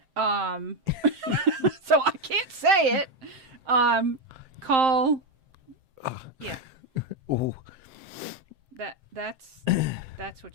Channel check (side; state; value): left; late; 7.6 ms